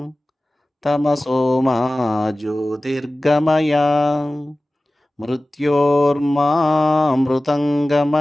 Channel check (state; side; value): normal; both; correlation 0.97